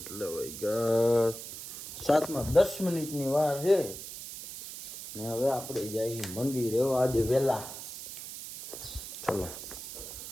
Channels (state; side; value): noise; right; hiss, 10 dB below the sound